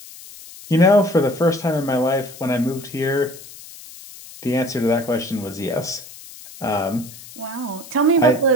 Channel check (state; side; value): noise; left; hiss, 17 dB below the sound